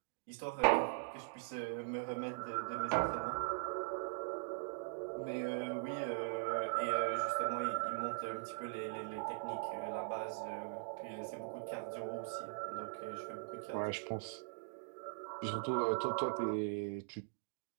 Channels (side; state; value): left; silent; digital silence